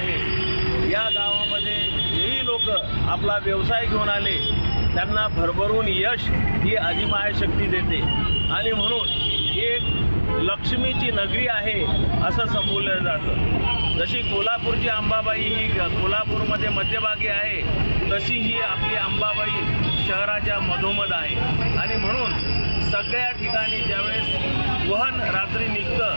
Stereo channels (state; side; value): inverted; both; correlation -1.00